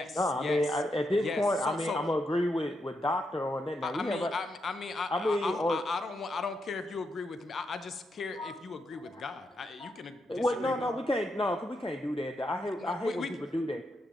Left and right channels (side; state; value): both; normal; correlation 0.82